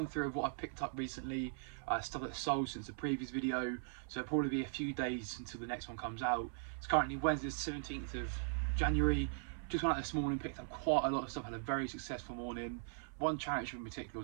through of what I've picked up recently, stuff that's sold since the previous video, so it'll probably be a few days until the next one comes out. It's currently Wednesday the 17th of January. Just went out this morning, picked up quite a lot of stuff, had a very successful morning. One charity shop in particular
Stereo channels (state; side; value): silent; left; 51 dB below the other